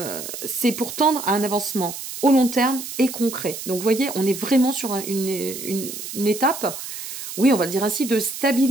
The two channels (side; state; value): right; noise; hiss, 9 dB below the sound